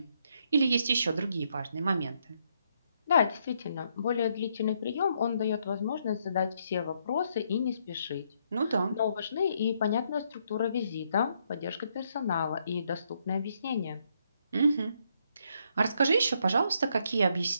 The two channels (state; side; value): inverted; both; correlation -0.74